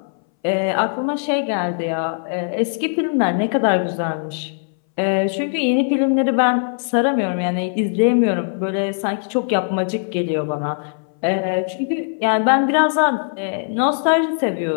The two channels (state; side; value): silent; right; 62 dB below the other